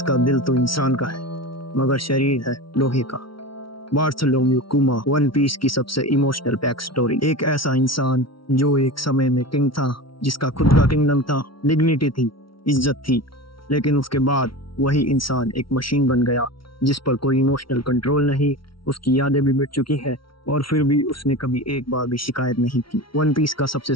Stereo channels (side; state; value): right; late; 0.74 ms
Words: दिल तो इंसान का है मगर शरीर है लोहे का। बार्थोलोम्यू कुमा वन पीस की सबसे इमोशनल बैक स्टोरी। एक ऐसा इंसान जो एक समय में किंग था, जिसका खुद का किंगडम था, डिग्निटी थी, इज्जत थी, लेकिन उसके बाद वही इंसान एक मशीन बन गया जिस पर कोई इमोशनल कंट्रोल नहीं। उसकी यादें भी मिट चुकी है और फिर भी उसने कभी एक बार भी शिकायत नहीं की। वन पीस का सबसे